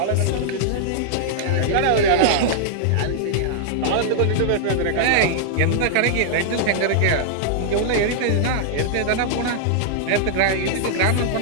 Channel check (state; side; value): different; both; correlation -0.01